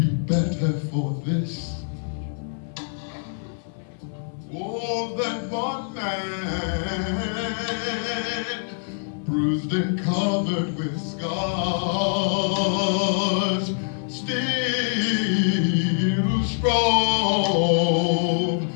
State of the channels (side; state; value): right; silent; 62 dB below the other